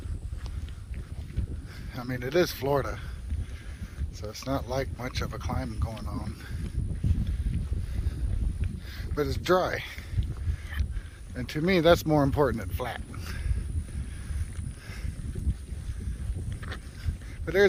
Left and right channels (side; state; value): both; identical; correlation 1.00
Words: I mean, it is Florida, so it's not like much of a climb going on. But it's dry. And to me, that's more important than flat. But